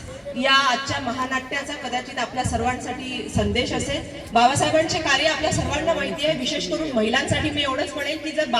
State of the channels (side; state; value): both; identical; correlation 1.00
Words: या आजच्या महानाट्याचा कदाचित आपल्या सर्वांसाठी संदेश असेल। बाबासाहेबांचे कार्य आपल्या सर्वांना माहिती आहे, विशेष करून महिलांसाठी मी एवढंच म्हणेन की जर